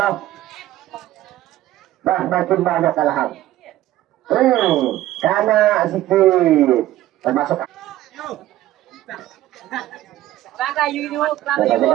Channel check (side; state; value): left; quieter; 14.5 dB